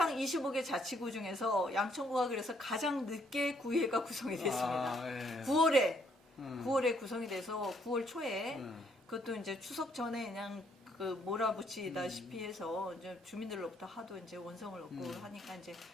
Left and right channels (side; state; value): both; normal; correlation 0.69